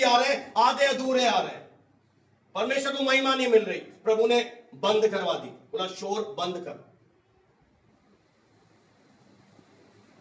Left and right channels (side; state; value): both; identical; correlation 1.00